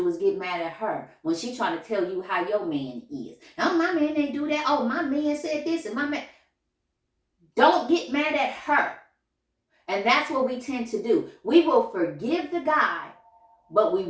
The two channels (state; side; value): identical; both; correlation 1.00